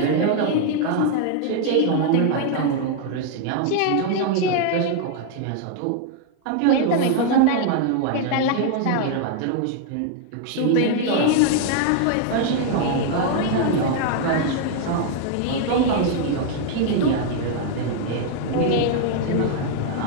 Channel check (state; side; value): different; both; correlation 0.00